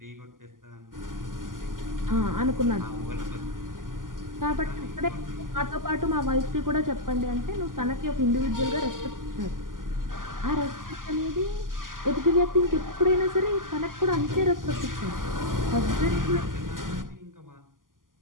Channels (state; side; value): late; left; 0.90 ms